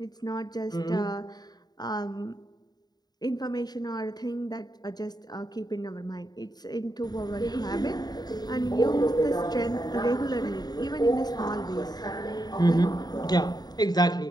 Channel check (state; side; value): late; right; 0.20 ms